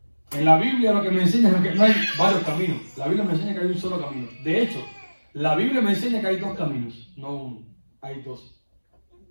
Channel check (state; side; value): inverted; both; correlation -1.00